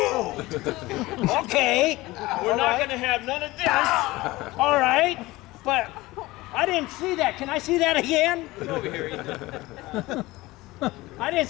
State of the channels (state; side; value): quieter; right; 19.7 dB